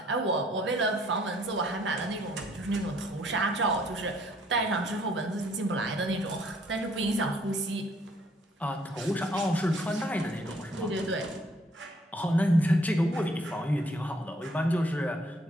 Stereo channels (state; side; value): normal; both; correlation 0.64